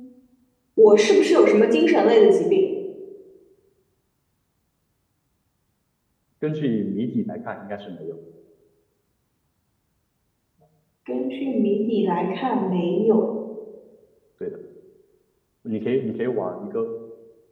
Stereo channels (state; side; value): identical; both; correlation 1.00